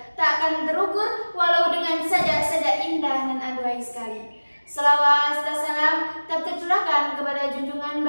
tak akan terukur walau dengan saja indah dan aduhai sekali. Selawat dan salam tak tercurahkan kepada junjungan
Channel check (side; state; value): both; inverted; correlation -1.00